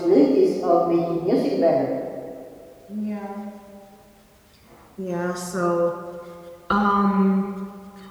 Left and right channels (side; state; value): both; identical; correlation 1.00